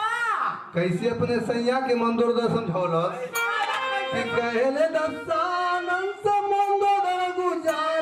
कैसे अपने सैया के मंदोदर समझौलस कि कहले दसानन से मंदोदर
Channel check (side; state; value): both; identical; correlation 1.00